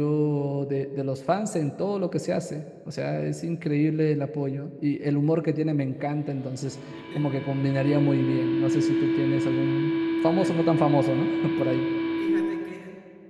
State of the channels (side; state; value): both; identical; correlation 1.00